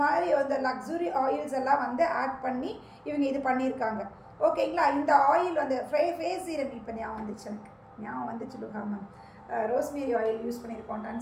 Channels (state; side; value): identical; both; correlation 1.00